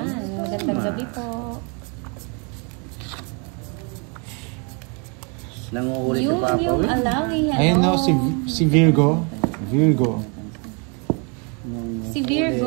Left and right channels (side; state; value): left; quieter; 34.9 dB